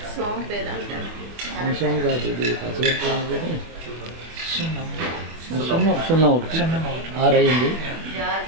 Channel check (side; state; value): left; late; 24 ms